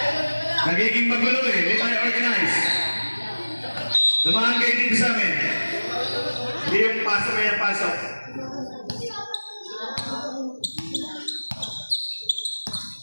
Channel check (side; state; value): both; inverted; correlation -1.00